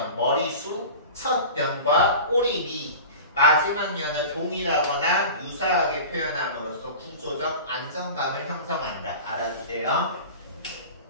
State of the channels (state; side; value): inverted; both; correlation -0.35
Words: 머리수, 첫 연과 꼬리비 마지막 연을 동일하거나 유사하게 표현함으로써 구조적 안정감을 형성한다. 알아주세요.